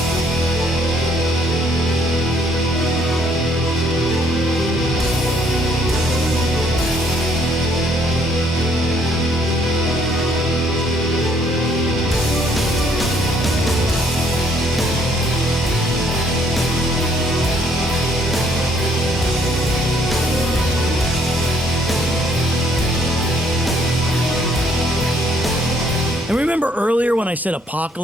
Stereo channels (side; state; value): both; normal; correlation 0.66